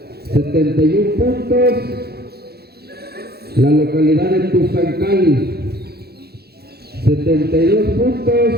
71 puntos la localidad de Tuzancali. 72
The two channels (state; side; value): late; left; 0.46 ms